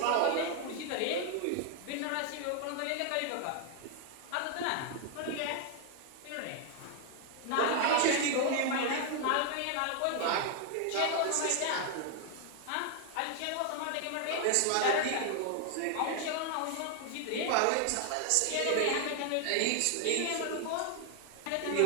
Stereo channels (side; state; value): both; different; correlation 0.00